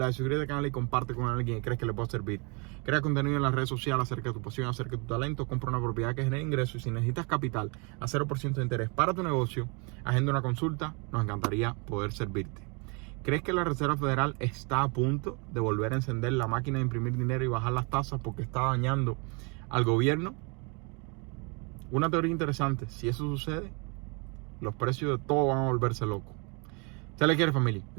suscríbete al canal y comparte con alguien que crees que le pueda servir. Crea contenido en las redes sociales acerca de tu pasión, acerca de tu talento. Compra una propiedad que genere ingresos, y si necesitas capital a 0% de interés para tu negocio, agenda una consulta. Nos encantaría poder servirte. ¿Crees que la Reserva Federal está a punto de volver a encender la máquina de imprimir dinero y bajar las tasas porque está dañando al gobierno? Una teoría interesante: si eso sucede, los precios de todo van a volverse locos. Se les quiere, familia. Que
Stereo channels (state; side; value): quieter; left; 32.4 dB